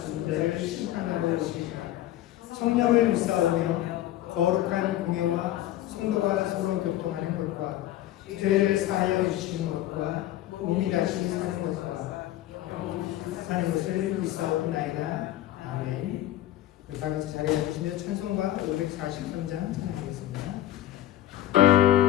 자를 심판하러 오시리라. 성령을 믿사오며 거룩한 공예와 성도가 서로 교통하는 것과 죄를 사하여 주시는 것과 몸이 다시 사는 것을 믿사옵나이다. 아멘. 우리 다 같이 자리에 앉으시며 찬송가 543장 찬양하겠습니다.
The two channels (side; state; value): right; quieter; 13.7 dB